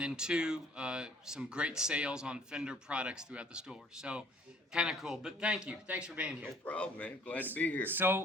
some great sales on Fender products throughout the store. So kind of cool. But thank you. Thanks for being here. No problem, man. Glad to be here.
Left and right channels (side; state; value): both; normal; correlation 0.56